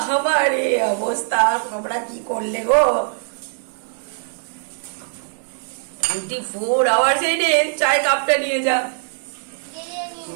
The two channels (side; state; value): left; silent; 65 dB below the other